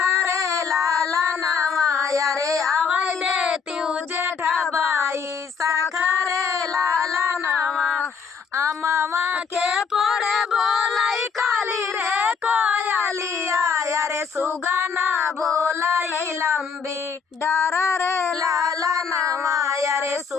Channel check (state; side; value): quieter; right; 6.0 dB